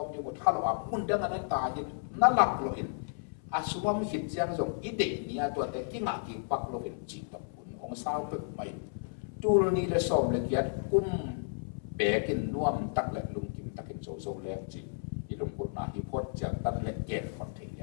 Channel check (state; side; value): silent; right; 56 dB below the other